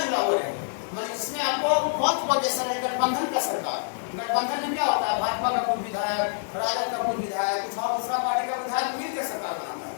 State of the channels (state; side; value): silent; right; digital silence